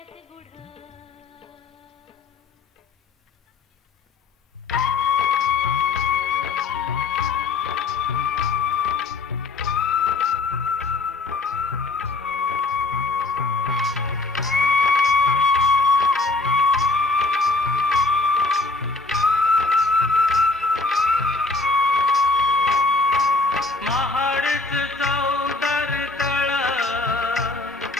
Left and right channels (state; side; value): quieter; right; 3.6 dB